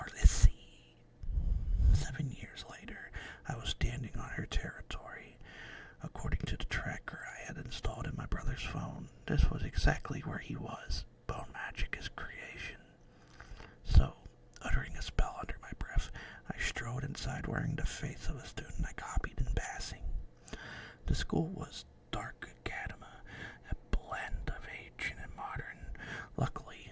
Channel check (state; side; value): identical; both; correlation 1.00